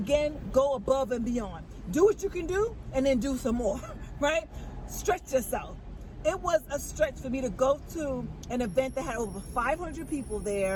go above and beyond. Do what you can do and then do some more, right? Stretch yourself. It was a stretch for me to go to an event that had over 500 people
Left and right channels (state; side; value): identical; both; correlation 1.00